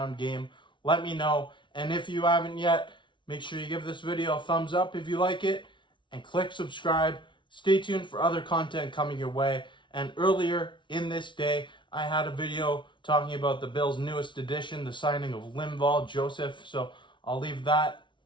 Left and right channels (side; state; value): right; late; 0.24 ms